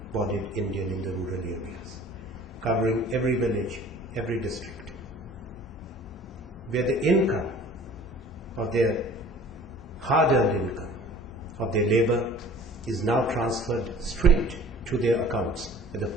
Indian in the rural areas, covering every village, every district, where the income of their hard-earned income, of their labor, is now transferred straight to their accounts, whether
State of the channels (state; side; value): normal; both; correlation 0.47